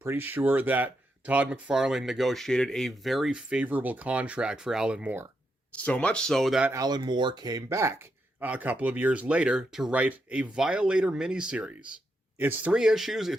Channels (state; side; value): normal; both; correlation 0.82